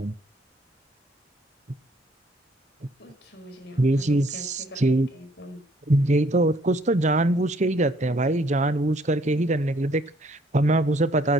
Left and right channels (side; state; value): both; normal; correlation 0.64